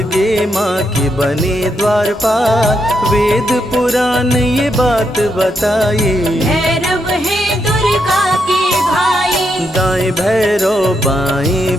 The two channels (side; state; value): both; normal; correlation 0.80